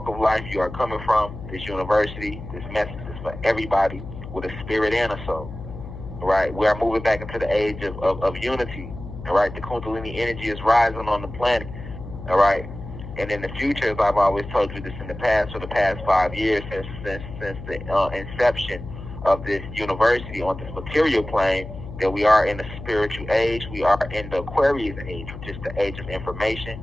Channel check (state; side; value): noise; left; hum, 11 dB below the sound